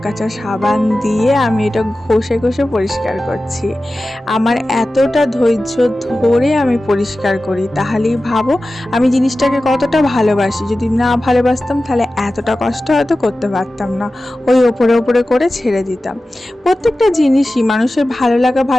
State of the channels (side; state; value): both; normal; correlation 0.95